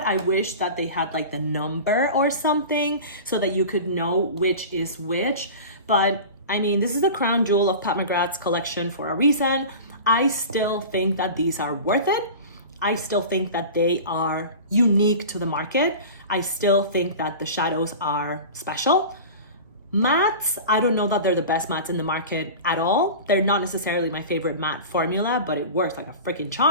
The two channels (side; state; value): both; inverted; correlation -0.34